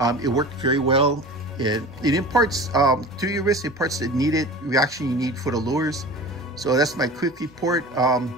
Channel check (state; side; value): noise; right; hum, 29 dB below the sound